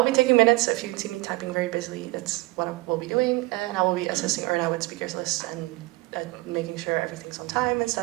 be taking minutes, so if you see me typing very busily, that's what I will be doing. And I will be assisting Erna with speakers lists and making sure everything's on time and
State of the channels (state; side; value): quieter; left; 22.0 dB